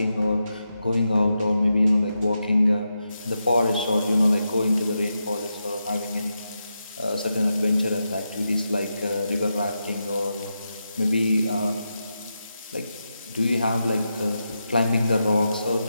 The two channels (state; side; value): inverted; both; correlation -0.87